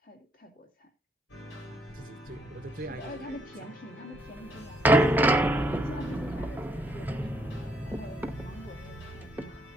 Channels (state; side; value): normal; both; correlation 0.72